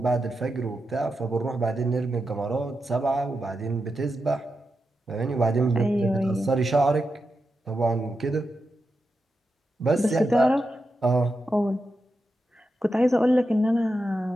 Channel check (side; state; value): both; normal; correlation 0.88